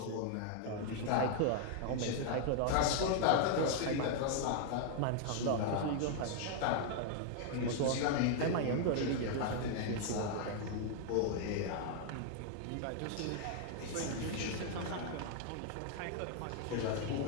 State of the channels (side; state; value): both; different; correlation 0.00